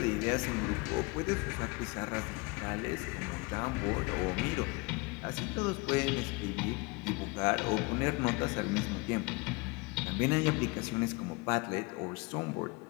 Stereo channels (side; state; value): right; quieter; 27.2 dB